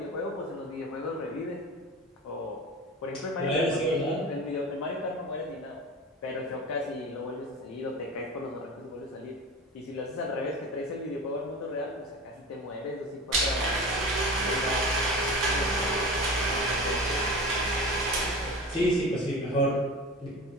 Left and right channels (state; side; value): normal; both; correlation 0.32